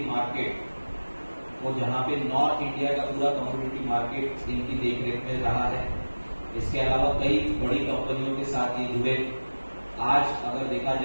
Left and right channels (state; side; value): inverted; both; correlation -1.00